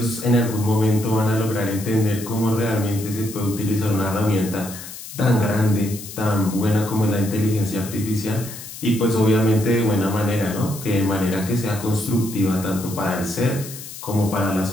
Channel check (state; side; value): noise; left; hiss, 12 dB below the sound